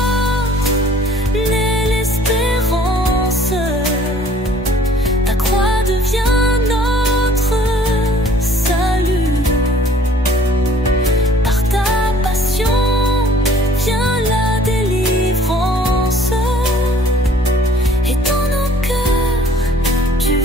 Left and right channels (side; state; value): both; normal; correlation 0.55